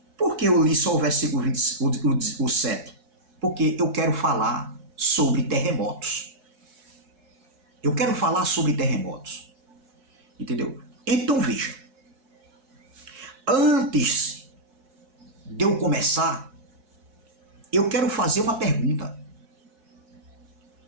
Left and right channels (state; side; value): late; left; 4.6 ms